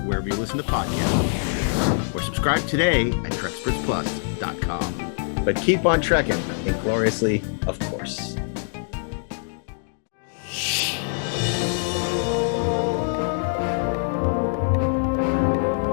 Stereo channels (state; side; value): silent; right; digital silence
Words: wherever you listen to podcasts. Or subscribe today at TrekspertsPlus.com. But keep on trekking, ingloriously, of course.